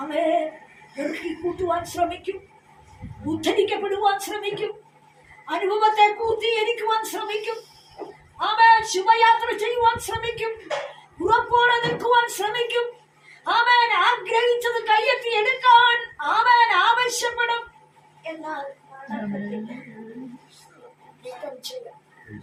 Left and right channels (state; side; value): identical; both; correlation 1.00